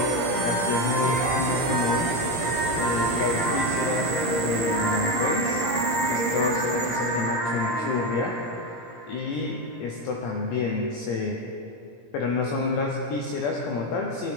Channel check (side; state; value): right; late; 17 ms